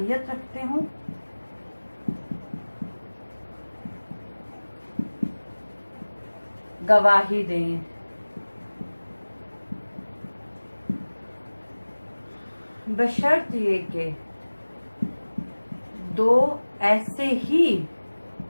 رکھتے ہوں گواہی دیں. بشرط یہ کہ دو ایسے ہی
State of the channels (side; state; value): both; inverted; correlation -1.00